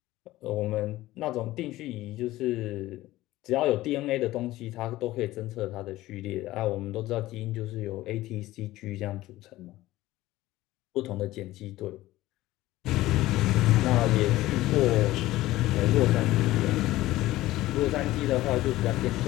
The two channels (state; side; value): quieter; right; 16.7 dB